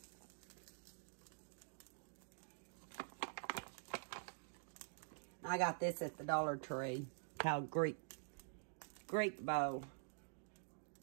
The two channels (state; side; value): silent; left; digital silence